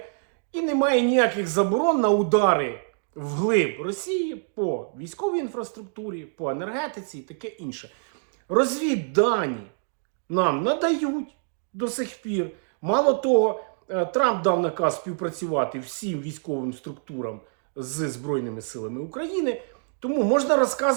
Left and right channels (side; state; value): left; silent; digital silence